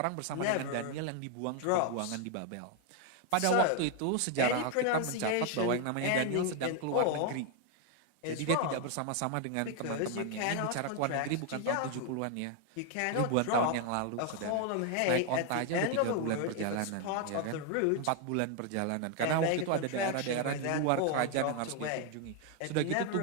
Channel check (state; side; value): different; both; correlation 0.01